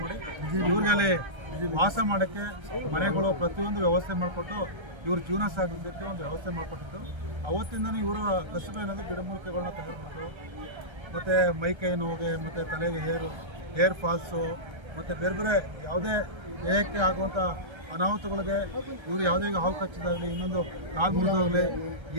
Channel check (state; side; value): late; left; 1.3 ms